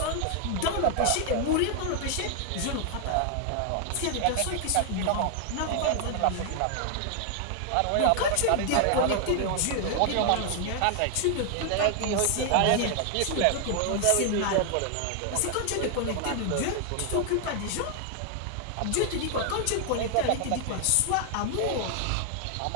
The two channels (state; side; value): different; both; correlation 0.00